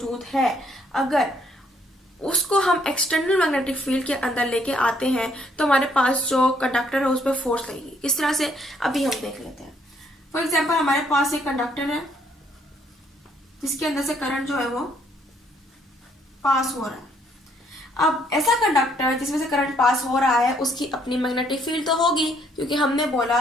है, अगर उसको हम एक्सटर्नल मैग्नेटिक फील्ड के अंदर लेके आते हैं तो हमारे पास जो कंडक्टर है उस पर फोर्स लगेगी। किस तरह से अभी हम देख लेते हैं। फॉर एग्जाम्पल हमारे पास एक कंडक्टर है जिसके अंदर से करंट जो है वो पास हो रहा है। अब ऐसा कंडक्टर जिसमें से करंट पास हो रहा है उसकी अपनी मैग्नेटिक फील्ड तो होगी, क्योंकि हमने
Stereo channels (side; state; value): both; normal; correlation 0.68